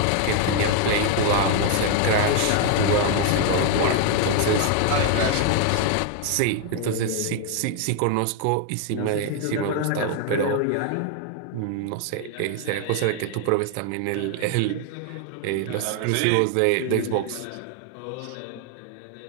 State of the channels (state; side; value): different; both; correlation 0.00